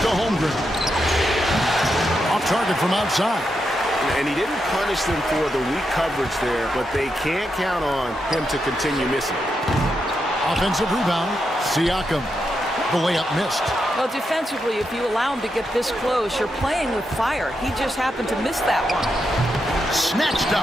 to Holmgren. Off target from outside. And he didn't punish them for the weak coverage there, but they can't count on him to continue missing. Offensive rebound, Siakam. The layup missed. Well, defensively, if you allow him to get this close, you're playing with fire. He just happened to miss that one. Snatched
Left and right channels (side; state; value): both; normal; correlation 0.84